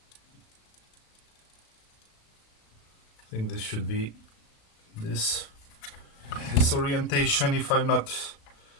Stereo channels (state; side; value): late; right; 36 ms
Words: I think this should be this orientation, if I'm not